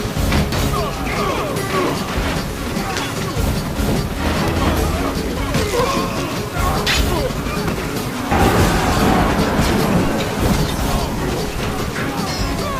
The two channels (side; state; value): both; identical; correlation 1.00